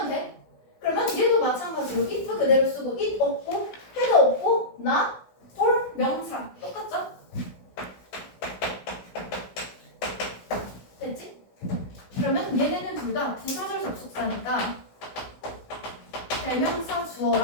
돼. 그러면 얘도 마찬가지로 if 그대로 쓰고 it 없고 had 없고 not for 명사 똑같죠? 됐지? 그러면 얘네는 둘 다 부사절 접속사니까 대명사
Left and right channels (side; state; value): right; late; 16 ms